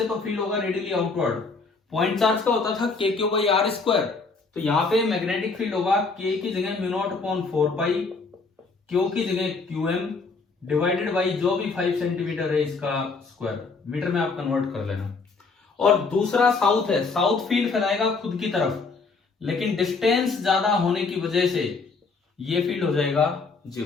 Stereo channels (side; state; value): right; quieter; 4.3 dB